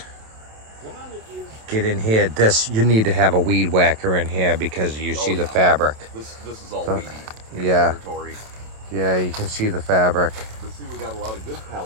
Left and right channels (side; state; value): left; late; 27 ms